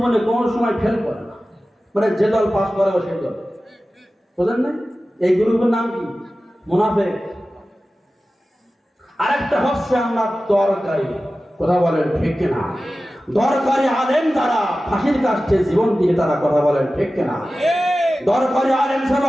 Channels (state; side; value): normal; both; correlation 0.95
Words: কোনো সময় ফেল করে না, মানে যে দল পাস করে ও সেই দল, বুঝলেন না? এই গ্রুপের নাম কি? মুনাফিক। আরেকটা হচ্ছে আপনার দরকারি। কথা বলেন ঠিক কিনা? দরকারি আলেম যারা ফাঁসির কাছে জীবন দিয়ে তারা, কথা বলেন ঠিক কিনা? দরকারি আলেম ছিল